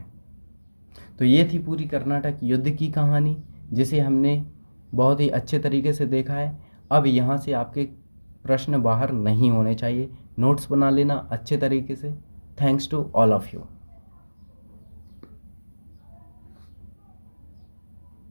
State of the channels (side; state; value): both; inverted; correlation -1.00